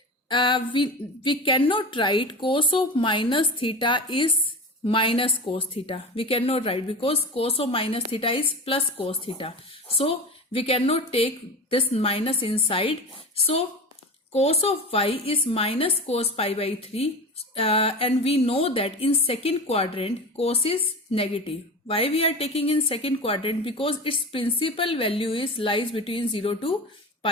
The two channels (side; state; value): both; normal; correlation 0.28